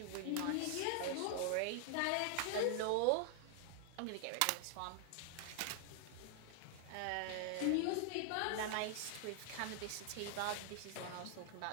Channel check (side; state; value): both; different; correlation 0.00